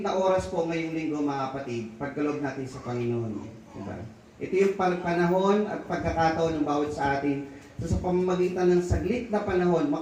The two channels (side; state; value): both; identical; correlation 1.00